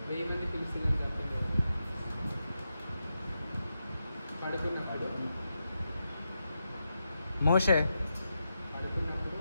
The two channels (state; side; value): inverted; both; correlation -0.87